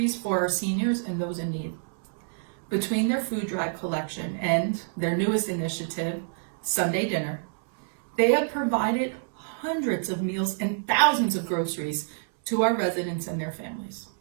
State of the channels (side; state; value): left; silent; 60 dB below the other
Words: for our seniors and those in need. Between their food drive collection and their newest initiative, Sunday Dinner, they have provided hundreds of meals and thousands of groceries to our residents and their families.